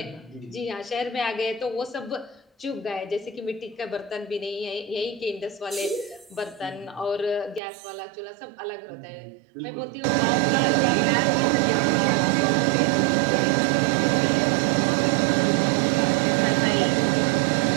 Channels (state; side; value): drops out; left; at 7.6 s